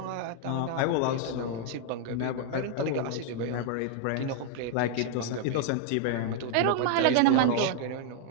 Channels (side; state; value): both; different; correlation 0.00